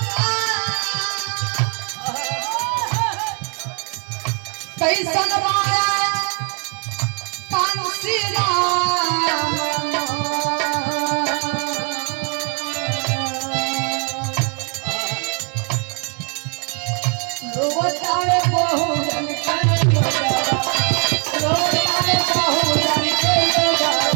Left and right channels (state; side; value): quieter; left; 39.6 dB